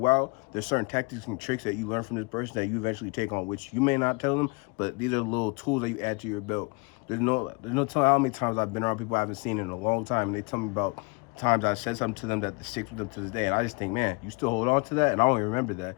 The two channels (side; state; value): right; quieter; 29.0 dB